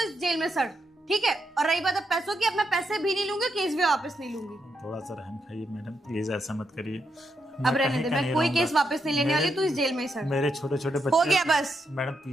इस जेल में सड़, ठीक है? और रही बात अब पैसों की, अब मैं पैसे भी नहीं लूंगी, केस भी वापस नहीं लूंगी। थोड़ा सा रहम खाइए मैडम, प्लीज ऐसा मत करिए। अब रहने दे, मैं कोई केस वापस नहीं लेने वाली, तू इस जेल में ही सड़। मेरे छोटे छोटे बच्चे हो गया बस मैडम,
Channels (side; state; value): both; normal; correlation 0.81